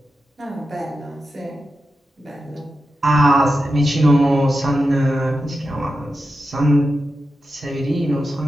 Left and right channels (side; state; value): both; normal; correlation 0.90